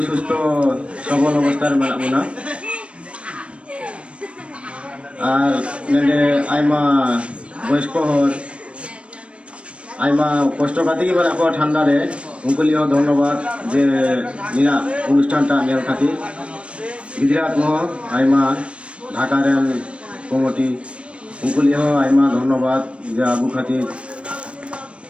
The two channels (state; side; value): late; left; 0.060 ms